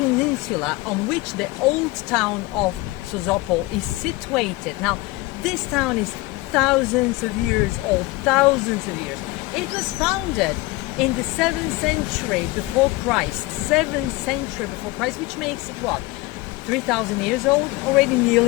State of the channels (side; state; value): right; quieter; 20.5 dB